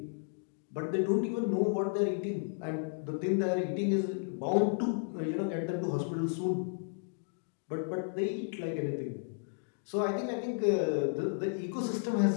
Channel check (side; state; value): right; silent; digital silence